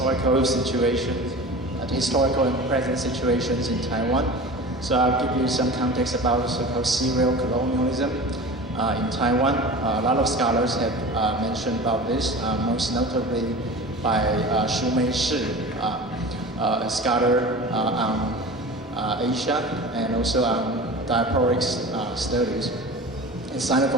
situations, the historical and present situations in Taiwan. So I'll give you some context about so-called serial colonialism in Taiwan. A lot of scholars have mentioned about this, most notably by Xu Meishi, a scholar on Asia and also on diasporic studies and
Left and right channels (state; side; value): normal; both; correlation 0.35